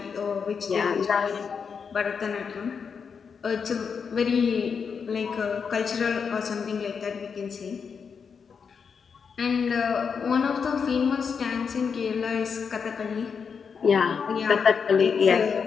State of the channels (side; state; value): right; quieter; 6.1 dB